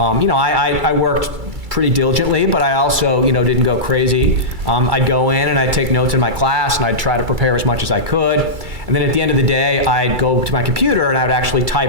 worked pretty diligently, but I also, didn't go crazy. I'd go in and I'd take notes in my class and I'd try to prepare as much as I could. And then at the end of the day, I'd go to my computer and I would actually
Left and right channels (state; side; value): late; left; 2.3 ms